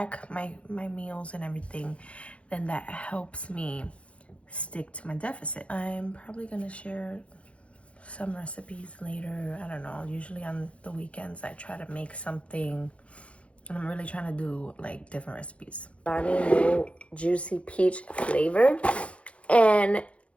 my meals and everything, then that helps me stick to my deficit. I'm probably gonna share some recipes later. I don't know, usually on the weekends I try to make something, and I'm really trying to do like different recipes. New juicy peach flavor. And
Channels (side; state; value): right; late; 0.062 ms